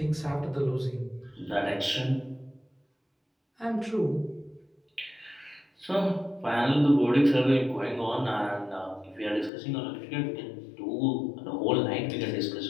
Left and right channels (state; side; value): drops out; right; at 9.5 s